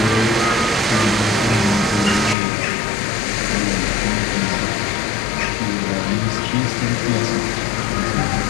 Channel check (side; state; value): right; drops out; at 2.4 s